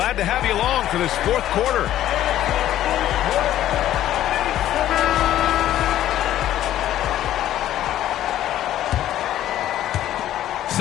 to have you along for this 4th quarter.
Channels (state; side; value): quieter; right; 12.6 dB